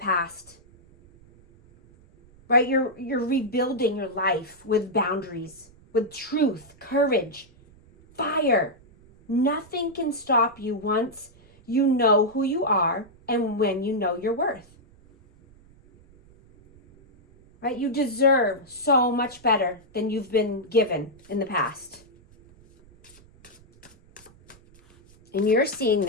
Right? You're rebuilding your life with boundaries, with truth, courage, fire. Nothing can stop you once you know who you are and when you know your worth. Right? You deserve so much better than you've been given in the past. And you're seeing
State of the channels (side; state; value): right; noise; rumble, 27 dB below the sound